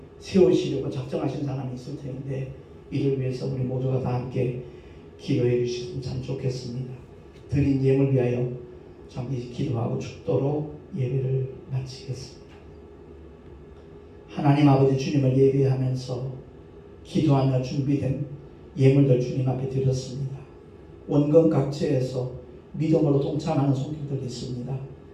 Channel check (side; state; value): both; identical; correlation 1.00